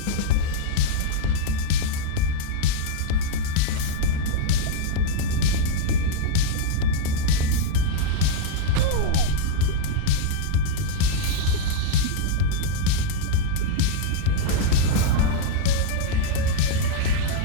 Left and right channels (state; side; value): different; both; correlation 0.00